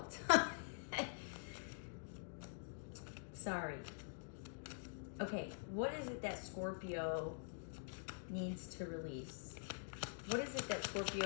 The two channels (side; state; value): right; silent; digital silence